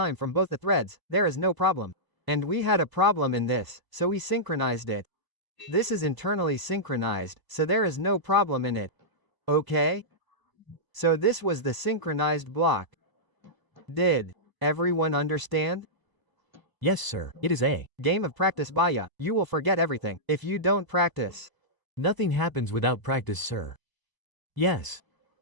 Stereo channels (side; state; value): left; late; 1.0 ms